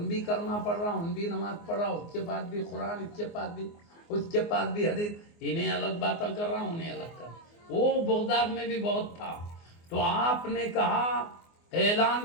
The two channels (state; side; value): late; right; 24 ms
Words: بھی کلمہ پڑھ رہا، ان بھی نماز پڑھ رہا، اس کے بعد بھی قرآن، اس کے بعد بھی حدیث، انہیں الگ باتیں کر رہا، انہیں الگ کر رہا۔ وہ بغداد میں بھی بہت تھا۔ تو آپ نے کہا،